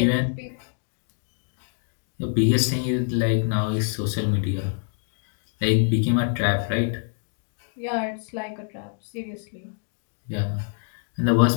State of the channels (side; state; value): right; silent; digital silence